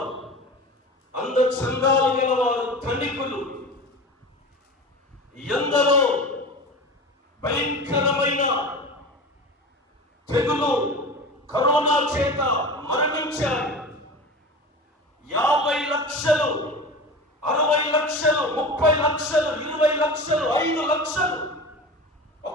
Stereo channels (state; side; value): normal; both; correlation 0.32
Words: అందచందాలు గలవారు, ధనికులు ఎందరో భయంకరమైన తెగులు, కరోనా చేత మరణించారు. 50 లక్షలు, 60 లక్షలు, 30 లక్షలు, 20 లక్షలు, 5 లక్షలు